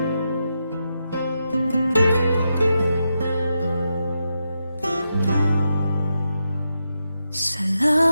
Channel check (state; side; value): inverted; both; correlation -0.86